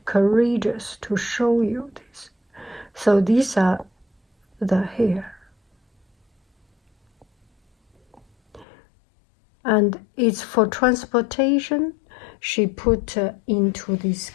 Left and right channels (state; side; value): drops out; right; at 8.7 s